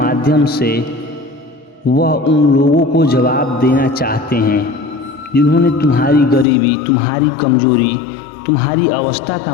से वह उन लोगों को जवाब देना चाहते हैं जिन्होंने तुम्हारी गरीबी, तुम्हारी कमजोरी, तुम्हारी अवस्था का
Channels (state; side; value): drops out; right; at 6.5 s